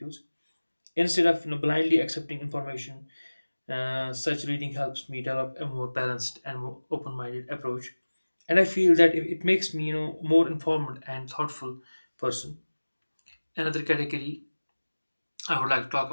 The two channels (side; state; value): both; inverted; correlation -1.00